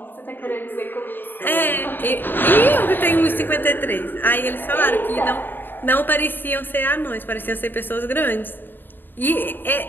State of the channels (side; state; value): right; late; 0.094 ms